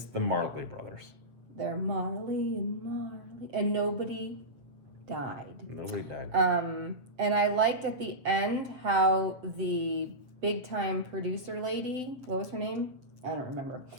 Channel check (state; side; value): late; left; 7.6 ms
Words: the Marley brothers. They're Marley, and nobody died. Nobody died. And I liked at the end how the big time producer lady, what was her name? I don't remember.